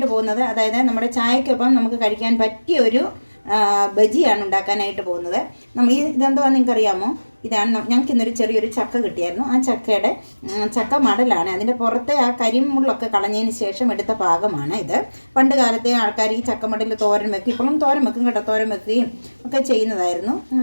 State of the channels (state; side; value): inverted; both; correlation -1.00